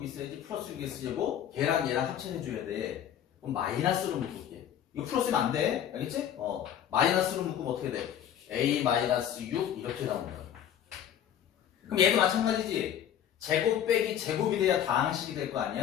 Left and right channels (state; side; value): quieter; right; 10.0 dB